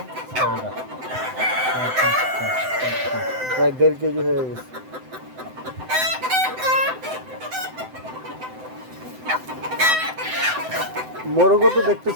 প্রায় 1.5 কেজি হয়ে গেছে। মোরগও তো দেখতে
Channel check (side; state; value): left; late; 7.8 ms